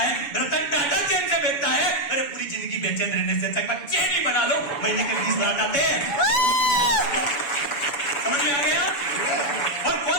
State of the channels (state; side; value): late; right; 7.0 ms